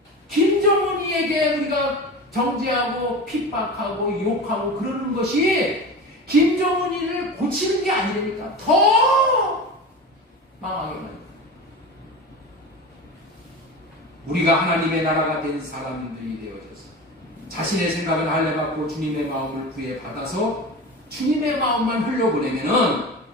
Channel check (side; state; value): both; normal; correlation 0.30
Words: 김정은이에게 우리가 정죄하고 핍박하고 욕하고 그러는 것이 김정은이를 고치는 게 아니니까 더 망하게 됩니다. 우리가 하나님의 나라가 된 사람들이 되어져서 자신의 생각을 할례받고 주님의 마음을 구해 받아서 주님의 마음만 흘려보내면은